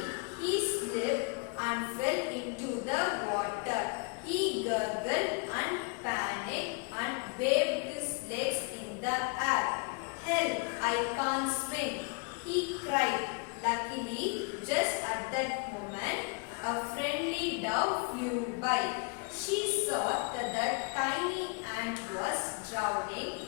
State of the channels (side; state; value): right; quieter; 33.9 dB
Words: he slipped and fell into the water. He gurgled and panicked and waved his legs in the air. Help! I can't swim, he cried. Luckily, just at that moment, a friendly dove flew by. She saw that the tiny ant was drowning